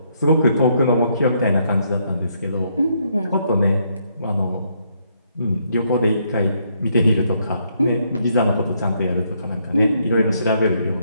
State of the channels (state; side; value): inverted; both; correlation -0.73